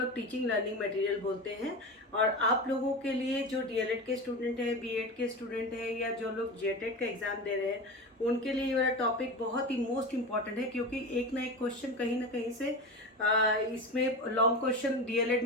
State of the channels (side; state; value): both; normal; correlation 0.25